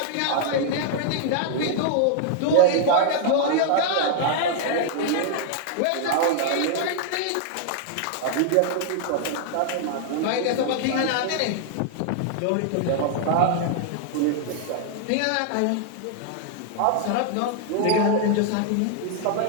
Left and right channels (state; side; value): different; both; correlation -0.01